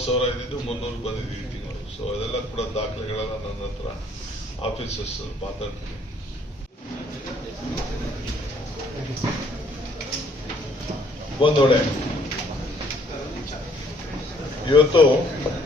ಇದ್ದಿದ್ದು 300 ಬಂದಿದ್ದೀವಿ ತಿಂಗಳು. ಸೊ ಅದೆಲ್ಲ ಕೂಡ ದಾಖಲೆಗಳೆಲ್ಲ ನನ್ನ ಹತ್ರ ಆಫೀಸರ್ಸ್ ಮಾತಾಡ್ತೀನಿ. ಬಂದೋಡೆ ಇವತ್ತು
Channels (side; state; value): both; normal; correlation 0.63